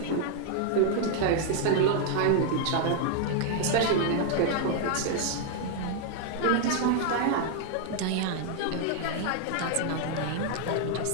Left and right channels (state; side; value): different; both; correlation 0.00